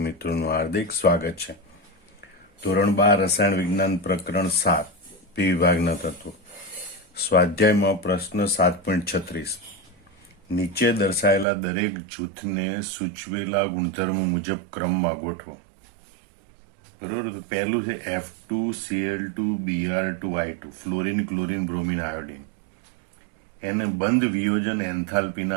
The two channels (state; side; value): drops out; left; at 11.5 s